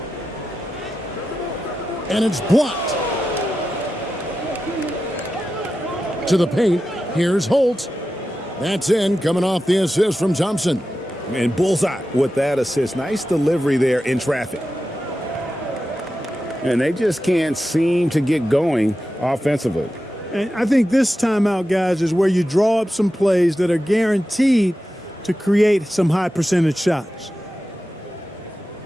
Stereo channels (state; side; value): normal; both; correlation 0.92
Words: And it's blocked. To the paint. Here's Holt. That's in, coming off the assist from Thompson. And bullseye with that assist. Nice delivery there in traffic. And they just can't seem to get going offensively. And I think this timeout, guys, is where you draw up some plays that are guaranteed to create some high percentage shots.